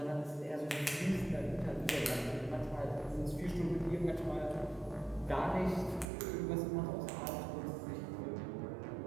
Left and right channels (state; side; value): drops out; left; at 6.1 s